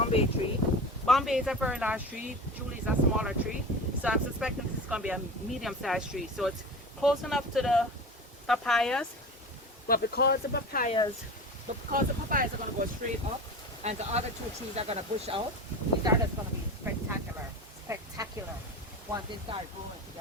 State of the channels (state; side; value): normal; both; correlation 0.31